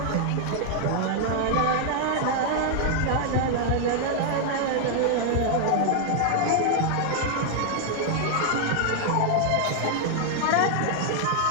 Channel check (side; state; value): both; different; correlation 0.00